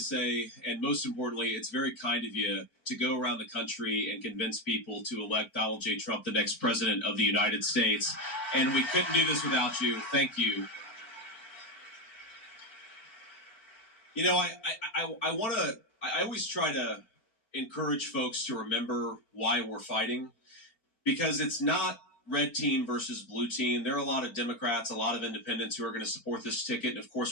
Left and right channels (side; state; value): right; late; 4.5 ms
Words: And most importantly, it's very kind of you to go around the country and convince people to elect Donald J. Trump the next president of the United States. And we couldn't do this without you. Thank you. I always try to encourage folks to remember why we're fighting, because it's not red team versus blue team. There are a lot of Democrats, a lot of independents who are going to support this ticket. And of